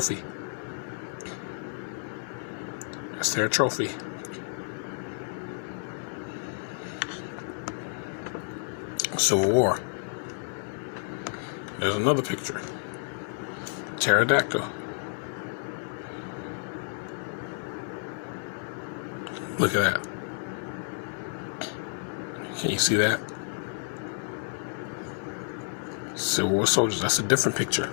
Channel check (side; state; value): right; silent; digital silence